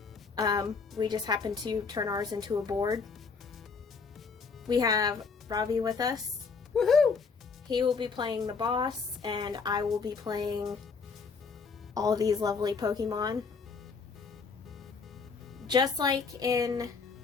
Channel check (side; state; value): right; quieter; 5.0 dB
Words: We just happen to turn ours into a board. We have Robbie with us. Woohoo! He will be playing the boss, and I will be playing all these lovely Pokemon. Just like in